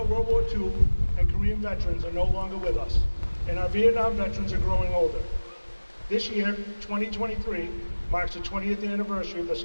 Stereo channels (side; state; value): both; inverted; correlation -1.00